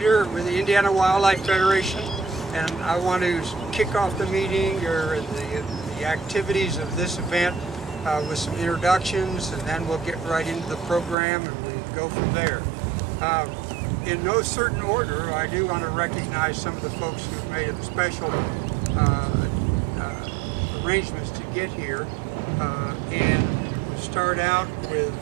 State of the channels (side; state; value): left; drops out; at 11.2 s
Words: with the Indiana Wildlife Federation, and I want to kick off the meeting or the activities of this event with some introductions, and then we'll get right into the program and we go from there. In no certain order, I do want to recognize some of the folks who've made special arrangements to get here, and we'll start out with